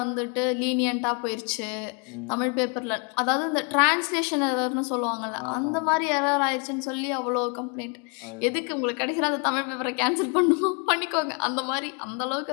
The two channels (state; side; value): quieter; right; 35.8 dB